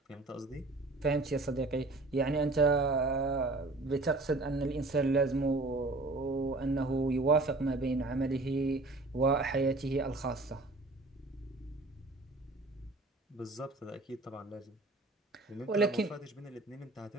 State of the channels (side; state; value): left; quieter; 3.1 dB